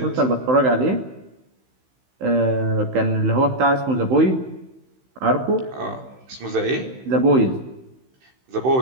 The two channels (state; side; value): late; left; 16 ms